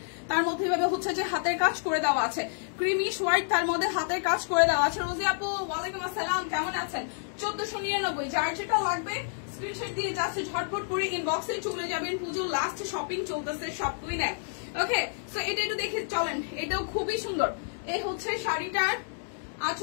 তার মধ্যে এভাবে হচ্ছে যে হাতের কাজ করে দেওয়া আছে, ক্রিমিশ হোয়াইট তার মধ্যে হাতের কাজ করে দেওয়া আছে। রোজি আপু ওয়ালাইকুম আসসালাম, কেমন আছেন? 1499, যার যেটা লাগবে স্ক্রিনশট দিয়ে যাচ্ছে, ঝটপট করে ইনবক্সে চলে যাবেন। পুজোর লাস্ট শপিং চলতেছে, সব কুইনে। ওকে, সো এটা একটু দেখে চলেন, এটাও খুবই সুন্দর। এই হচ্ছে শাড়িটার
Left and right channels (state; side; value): silent; right; digital silence